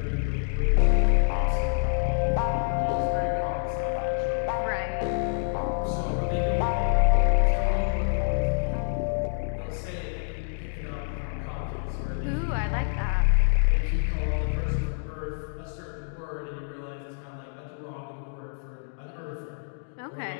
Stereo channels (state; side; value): silent; right; digital silence